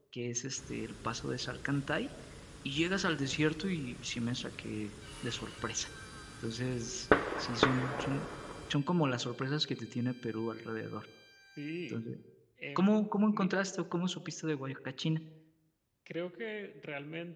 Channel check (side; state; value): both; identical; correlation 1.00